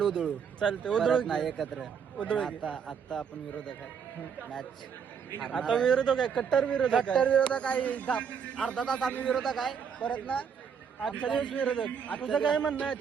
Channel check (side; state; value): left; quieter; 7.0 dB